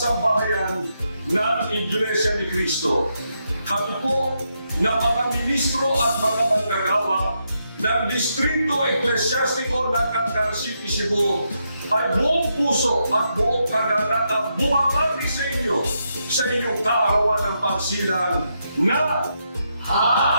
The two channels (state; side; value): inverted; both; correlation -0.81